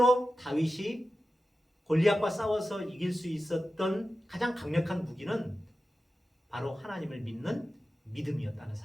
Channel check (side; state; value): both; normal; correlation 0.93